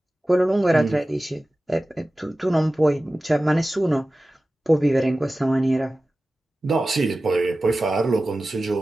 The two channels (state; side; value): normal; both; correlation 0.96